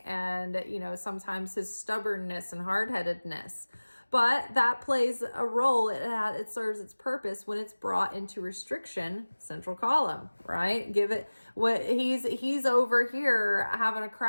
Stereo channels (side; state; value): both; inverted; correlation -1.00